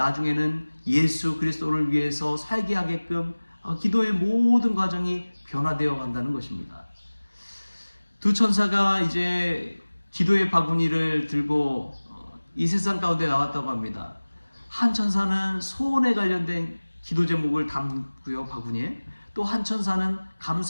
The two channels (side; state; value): both; inverted; correlation -1.00